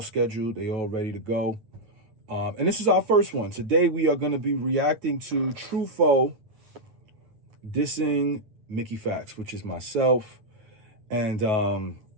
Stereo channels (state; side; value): late; left; 9.3 ms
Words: scheduled. They all ready to go. And this is our first one. Today, we are going to be reacting to Tru Foe dissing Mickey Factz, which is myself. And